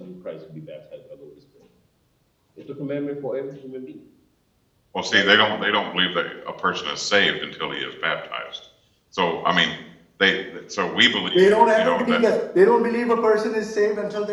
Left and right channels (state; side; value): identical; both; correlation 1.00